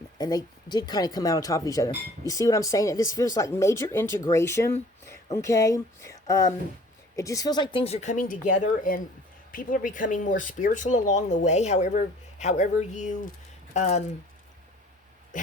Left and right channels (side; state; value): both; normal; correlation 0.52